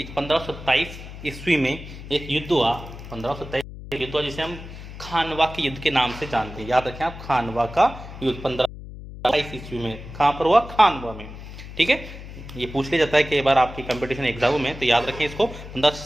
1527 ईस्वी में एक युद्ध हुआ। 1527 युद्ध हुआ जिसे हम खानवा के युद्ध के नाम से जानते हैं। याद रखें आप, खानवा का युद्ध 1527 ईस्वी में कहाँ पर हुआ? खानवा में। ठीक है, ये पूछ लिया जाता है कि बार आपकी कंपटीशन एग्जाम में, तो याद रखें इसको।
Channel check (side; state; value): left; noise; hum, 13 dB below the sound